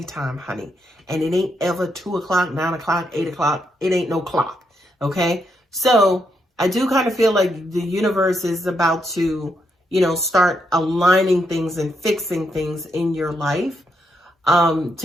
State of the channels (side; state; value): both; normal; correlation 0.79